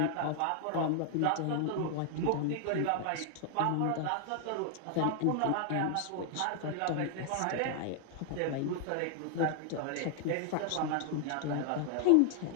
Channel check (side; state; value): both; different; correlation -0.01